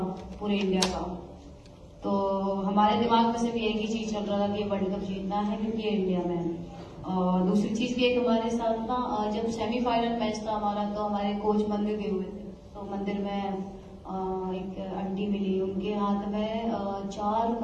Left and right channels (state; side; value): identical; both; correlation 1.00